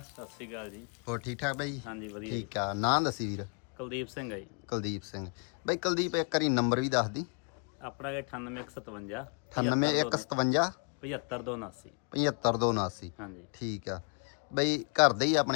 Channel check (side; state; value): right; quieter; 38.7 dB